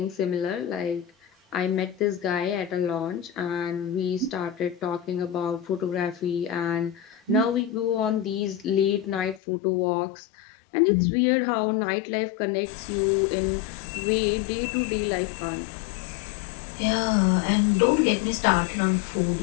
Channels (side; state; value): right; drops out; at 9.4 s